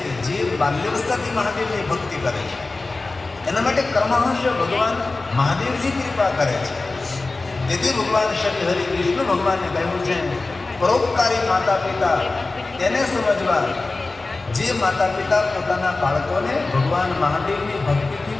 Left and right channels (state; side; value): quieter; right; 3.4 dB